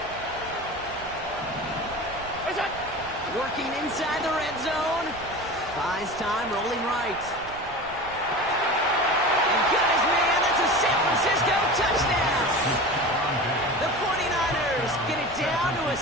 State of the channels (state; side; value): noise; right; rumble, 19 dB below the sound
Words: Working inside the red zone. Buys time, rolling right. And got his man. That's a San Francisco touchdown. The 49ers get it down to a